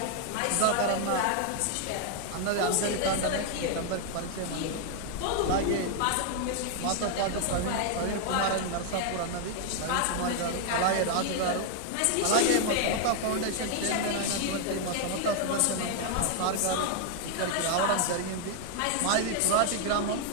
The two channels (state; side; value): different; both; correlation 0.00